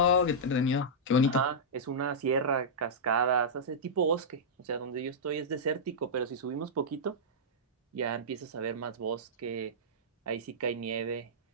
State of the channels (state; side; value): normal; both; correlation -0.12